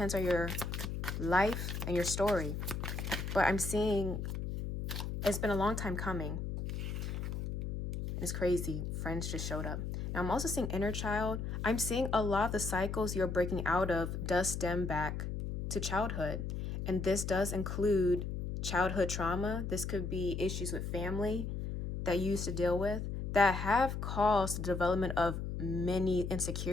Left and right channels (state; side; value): noise; left; hum, 4 dB below the sound